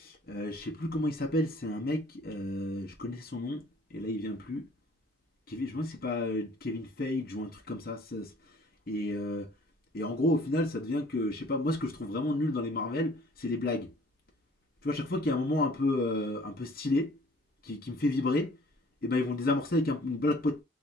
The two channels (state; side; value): normal; both; correlation 0.54